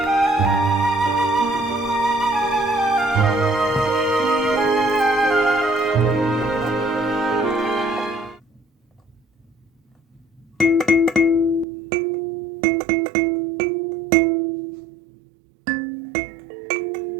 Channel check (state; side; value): drops out; left; at 11.7 s